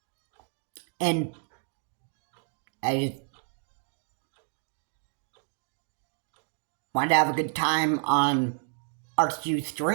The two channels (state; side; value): silent; left; 57 dB below the other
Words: And I just wanted to have a good time on RCU